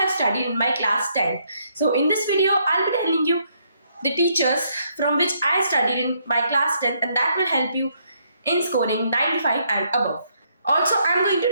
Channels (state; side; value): inverted; both; correlation -0.72